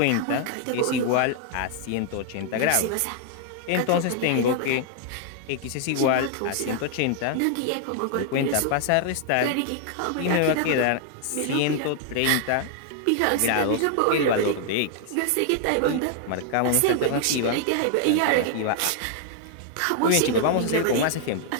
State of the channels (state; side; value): different; both; correlation 0.00